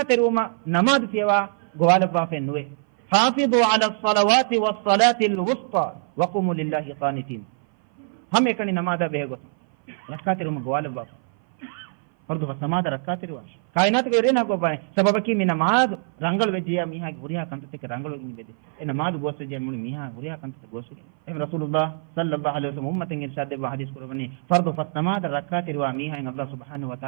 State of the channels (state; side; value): silent; left; 57 dB below the other